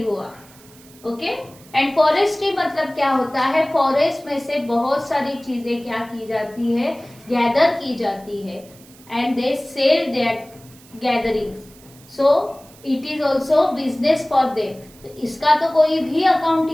हुआ. Okay. And forestry मतलब क्या होता है, फॉरेस्ट में से बहुत सारी चीजें क्या की जाती है, गैदर की जाती है, and they sell that gatherings. So it is also business for them. तो इसका तो कोई भी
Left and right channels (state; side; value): noise; right; hiss, 24 dB below the sound